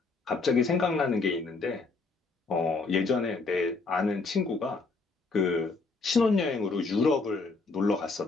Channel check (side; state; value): right; quieter; 4.0 dB